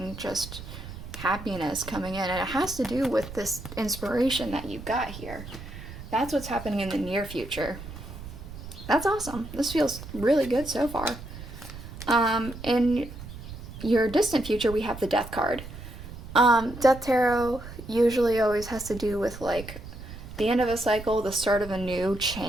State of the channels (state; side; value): noise; right; rumble, 12 dB below the sound